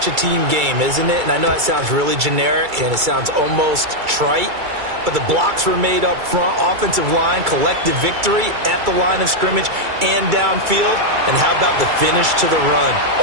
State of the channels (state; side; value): late; left; 2.3 ms